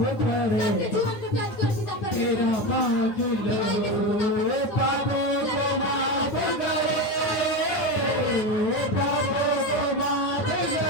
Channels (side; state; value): right; late; 9.4 ms